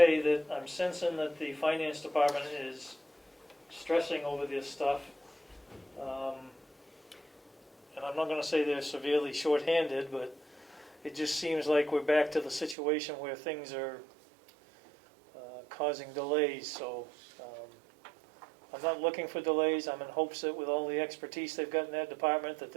that I'm sensing that the finance department is stressing over this stuff. And I'm not gonna say they're severely shorthanded, but it just seems like we're back to the situation where things are causing delays, so I'm not looking for delays. I'm in hopes that with all the expertise they've got in that department, that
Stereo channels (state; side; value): drops out; left; at 12.8 s